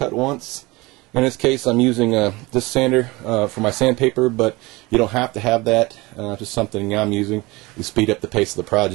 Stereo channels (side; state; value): left; quieter; 22.7 dB